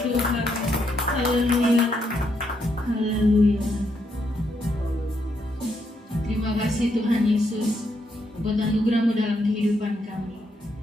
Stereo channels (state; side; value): normal; both; correlation 0.78